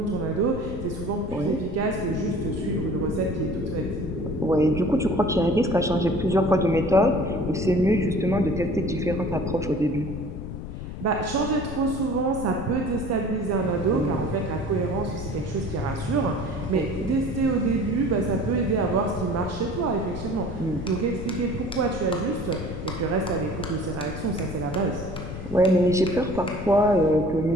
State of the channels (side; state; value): left; noise; rumble, 8 dB below the sound